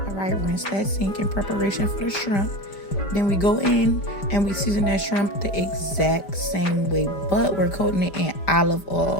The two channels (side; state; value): right; late; 5.0 ms